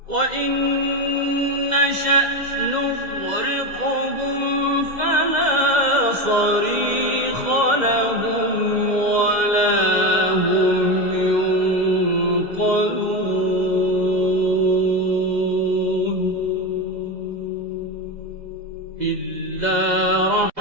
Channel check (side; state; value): left; late; 2.0 ms